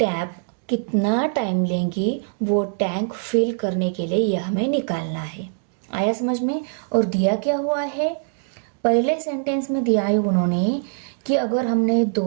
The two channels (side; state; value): left; silent; 64 dB below the other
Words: कितना time लेंगी वो tank fill करने के लिए यह हमें निकालना है। आया समझ में। और दिया क्या हुआ है, पहले सेंटेंस में दिया है उन्होंने कि अगर हमने